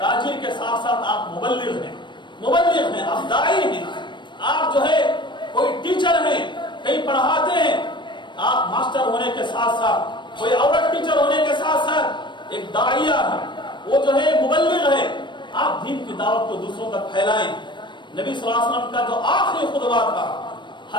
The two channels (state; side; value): late; right; 0.22 ms